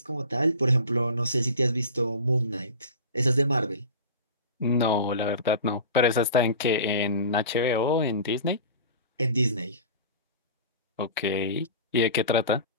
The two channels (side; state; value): both; inverted; correlation -0.36